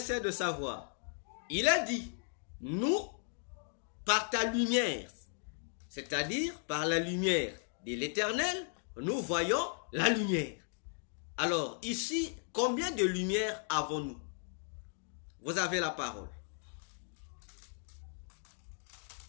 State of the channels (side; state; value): right; silent; 54 dB below the other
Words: de savoir. Il a dit, nous, par ta lumière, c'est-à-dire par la lumière de l'Éternel, nous voyons la lumière. Alors, ici, combien de lumières avons-nous? Vous avez la parole.